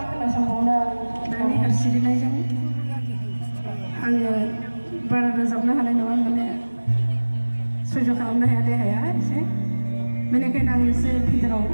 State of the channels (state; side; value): inverted; both; correlation -1.00